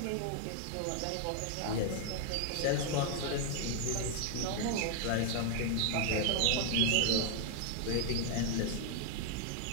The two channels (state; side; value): different; both; correlation 0.00